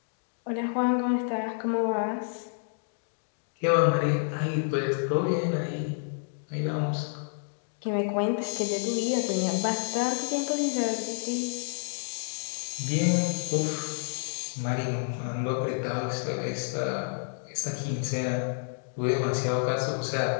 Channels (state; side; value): silent; right; digital silence